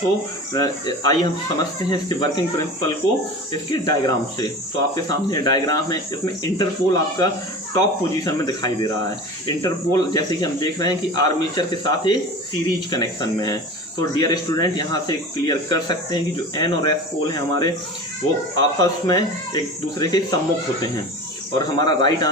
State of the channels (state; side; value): normal; both; correlation 0.34